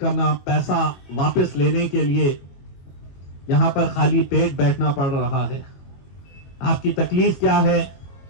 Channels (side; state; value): right; late; 22 ms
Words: पैसा वापस लेने के लिए यहां पर खाली पेट बैठना पड़ रहा है. आपकी तकलीफ क्या है,